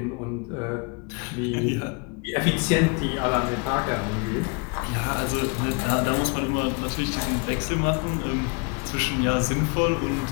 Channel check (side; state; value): right; quieter; 31.9 dB